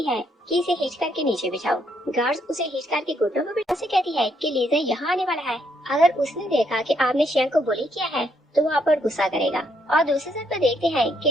है कि इसे हिच करके नीचे बिठाओ। गार्ड्स उसे हिच करके घुटनों पर बिठा से कहती है कि लीजा यहाँ आने वाला है, अगर उसने देखा कि आपने शेंग को बुली किया है तो वो आप पर गुस्सा करेगा। और दूसरी साइड पर देखते हैं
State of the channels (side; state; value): both; normal; correlation 0.73